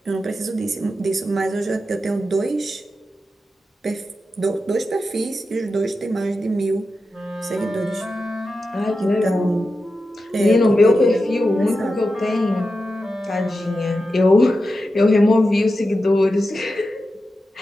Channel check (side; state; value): both; normal; correlation 0.90